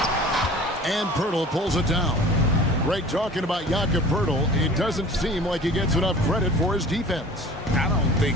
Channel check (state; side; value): normal; both; correlation 0.44